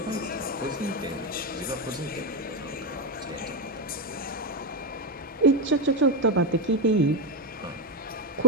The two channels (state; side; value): normal; both; correlation 0.07